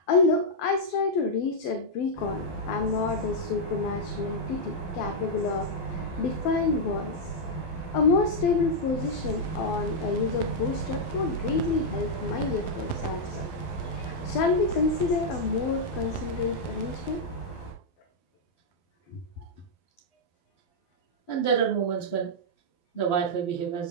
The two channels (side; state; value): right; late; 12 ms